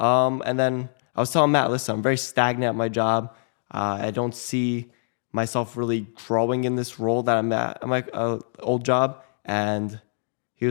then I was telling Matt, listen, I'm very stagnant at my job. I don't see myself really growing in this role that I'm at. I'm old job. And he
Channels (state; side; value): silent; right; digital silence